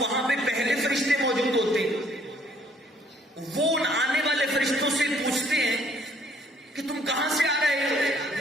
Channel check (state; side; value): normal; both; correlation 0.62